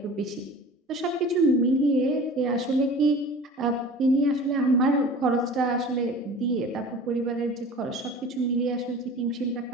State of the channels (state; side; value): normal; both; correlation 0.41